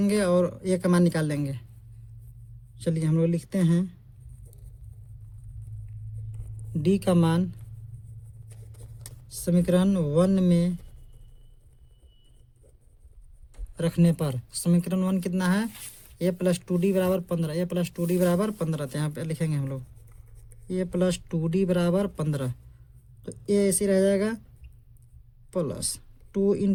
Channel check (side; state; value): both; identical; correlation 1.00